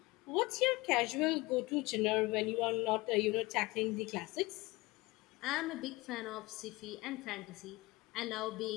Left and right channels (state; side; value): quieter; right; 21.9 dB